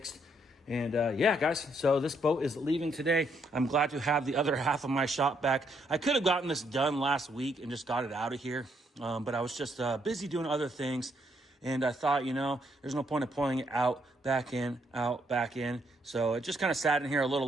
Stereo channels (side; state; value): both; normal; correlation 0.73